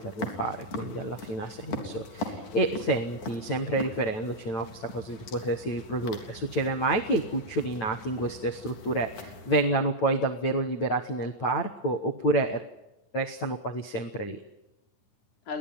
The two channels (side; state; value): right; late; 9.1 ms